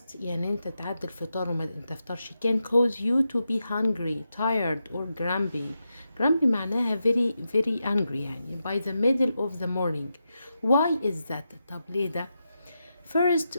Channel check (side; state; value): both; inverted; correlation -0.87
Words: يعني انت تعدي الفطار وما تفطرش can cause you to be hungry, tired or grumpy. Grumpy معناها very angry يعني by the middle of the morning. Why is that؟ طب ليه ده؟ First,